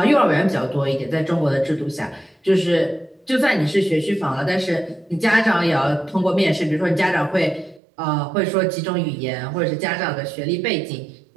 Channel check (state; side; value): drops out; left; at 7.8 s